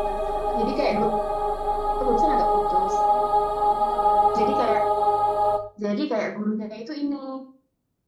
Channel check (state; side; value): identical; both; correlation 1.00